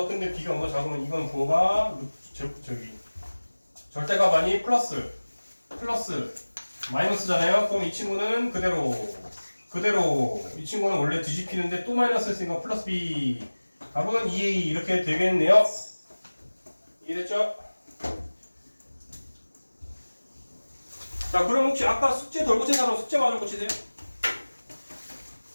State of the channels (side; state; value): both; inverted; correlation -1.00